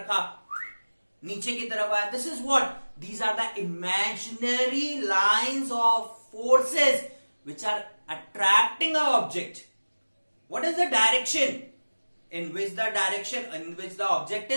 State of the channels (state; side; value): inverted; both; correlation -1.00